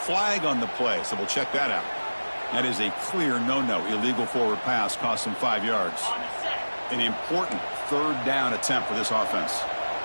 on the play, so we'll check that out. That is a clear no-no. Illegal forward pass cost him 5 yards. An important third down attempt for this offense.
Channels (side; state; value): both; inverted; correlation -1.00